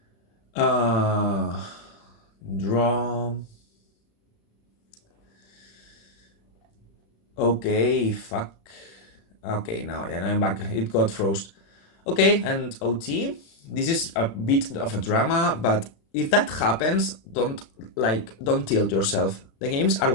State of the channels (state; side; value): late; right; 35 ms